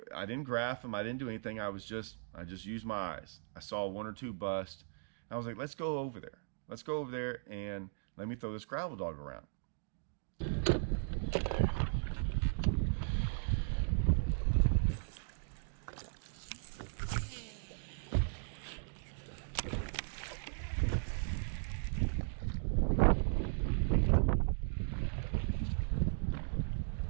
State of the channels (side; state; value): left; silent; digital silence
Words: I didn't graph them. I didn't do anything. I just used my eyes. I saw 1 or 2 bust. I was like, let's go over there. Let's go over there and let me throw this gravel dog around.